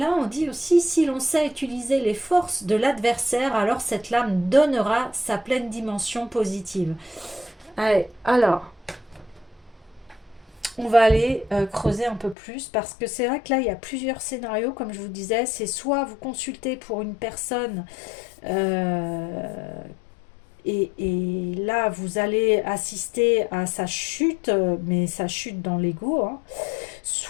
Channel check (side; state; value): right; drops out; at 12.4 s